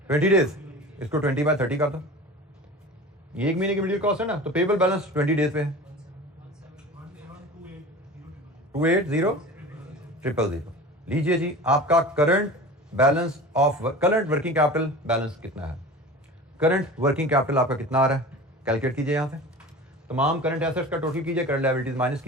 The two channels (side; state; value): both; normal; correlation 0.36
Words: 20 डेज। इसको 20/30 कर दो, ये 1 महीने की मटेरियल कॉस्ट है ना, तो पेएबल बैलेंस 20 डेज पे है 280,000। लीजिए जी आपका current balance of current working capital balance कितना है? करंट वर्किंग कैपिटल आपका कितना आ रहा है? कैलकुलेट कीजिए यहां से तमाम करंट एसेट्स का टोटल कीजिए, करंट लायबिलिटीज माइनस